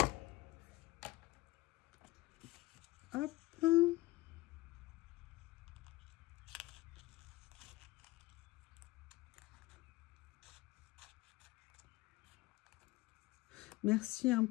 Hop. Merci hein,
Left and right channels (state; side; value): quieter; right; 19.5 dB